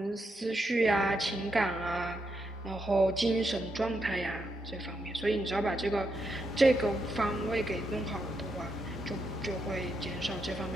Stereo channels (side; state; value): both; normal; correlation 0.82